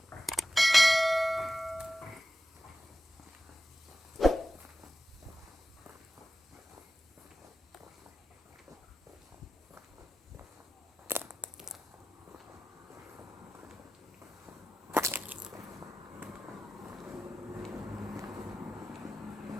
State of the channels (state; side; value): normal; both; correlation 0.93